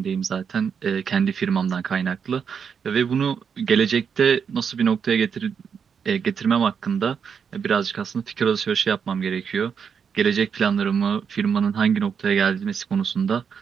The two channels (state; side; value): quieter; left; 6.8 dB